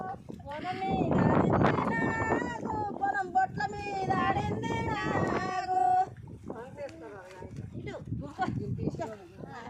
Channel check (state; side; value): identical; both; correlation 1.00